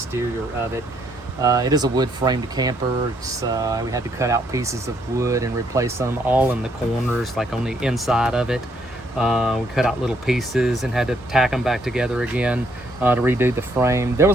of it. It is a wood framed camper. We had to cut out pieces of wood and replace them all in the corners, like on the inside of it. We cut out little pieces and had to tack them back together again to redo the frame. There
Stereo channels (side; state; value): both; normal; correlation 0.71